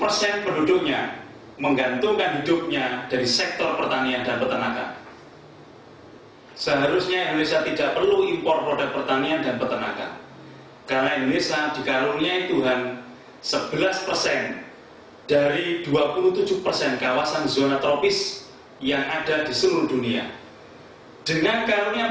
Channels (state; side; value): identical; both; correlation 1.00